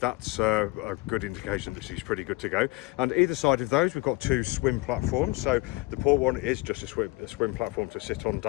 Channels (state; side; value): quieter; right; 23.2 dB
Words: a good indication that she's pretty good to go. And either side of those we've got two swim platforms. So the port one is just a swim platform to sit on,